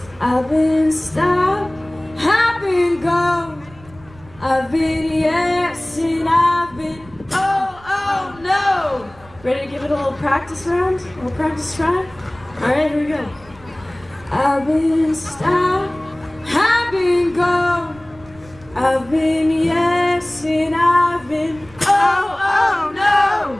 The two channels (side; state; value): right; noise; rumble, 24 dB below the sound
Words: I've been stopped, I've been go. I've been yes and I've been oh, oh no. Ready to give it a little practice round? A little practice try? Alright, here we go. I've been stopped, I've been go. I've been yes and I've been oh, oh no.